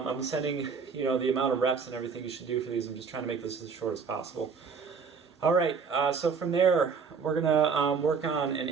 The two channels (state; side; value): quieter; left; 5.6 dB